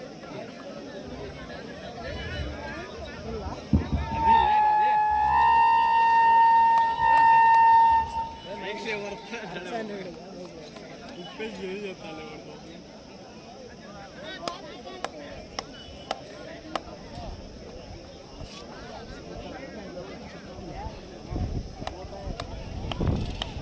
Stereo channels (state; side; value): identical; both; correlation 1.00